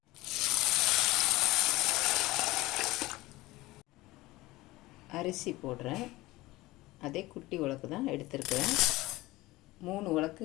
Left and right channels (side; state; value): right; quieter; 19.2 dB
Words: அரிசி போடுறேன். அதே குட்டி உலக்கு தான் எடுத்துருக்கிறேன். 3